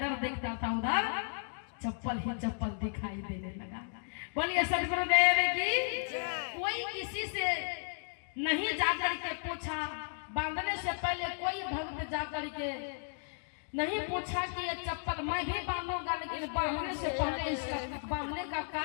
देखता था उधर चप्पल ही चप्पल दिखाई देने लगा। बोलिए सदगुरुदेव की। कोई किसी से नहीं जाकर के पूछा, बांधने से पहले कोई भक्त जाकर के नहीं पूछा कि ये चप्पल मैं भी बांधूंगा, लेकिन बांधने से पहले इस बांधने का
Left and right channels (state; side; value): silent; right; digital silence